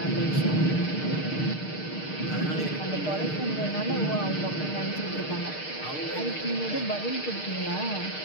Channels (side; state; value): right; late; 6.6 ms